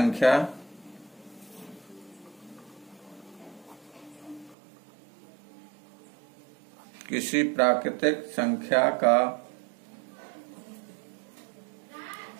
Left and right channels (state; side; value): drops out; left; at 4.5 s